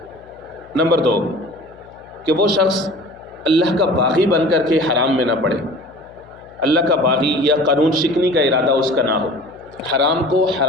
نمبر 2 کہ وہ شخص اللہ کا باغی بن کر کے حرام میں نہ پڑے، اللہ کا باغی یا قانون شکنی کا ارادہ اس کا نہ ہو، حرام کو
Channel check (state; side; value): noise; left; hum, 26 dB below the sound